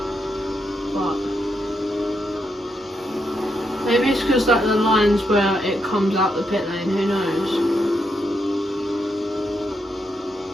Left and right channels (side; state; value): both; normal; correlation 0.81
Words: But maybe it's because like the lines where it comes out the pit lane, who knows?